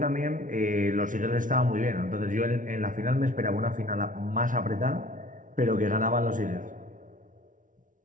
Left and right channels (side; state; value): left; late; 0.38 ms